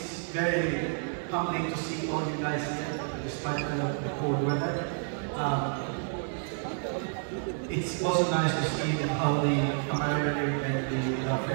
very humbling to see all you guys here, despite the cold weather. It's also nice to see how the camaraderie and the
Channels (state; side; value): silent; left; 58 dB below the other